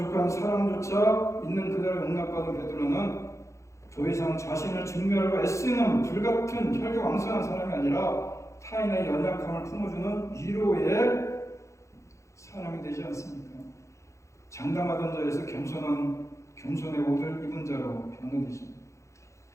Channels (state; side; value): late; right; 0.14 ms